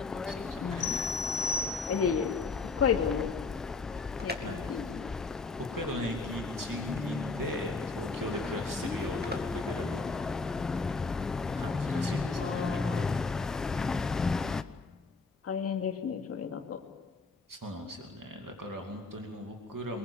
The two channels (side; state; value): right; quieter; 4.0 dB